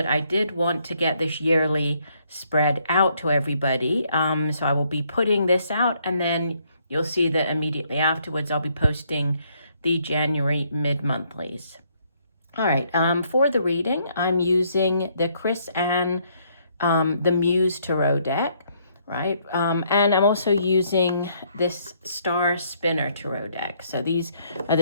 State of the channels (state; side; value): inverted; both; correlation -0.69